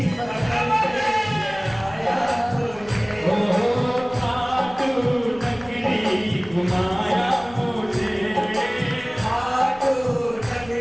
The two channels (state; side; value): noise; left; rumble, 22 dB below the sound